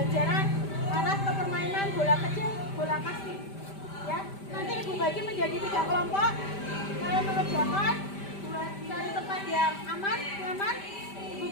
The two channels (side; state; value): right; late; 5.1 ms